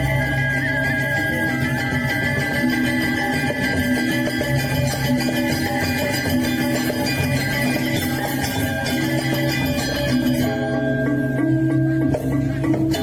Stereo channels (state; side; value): identical; both; correlation 1.00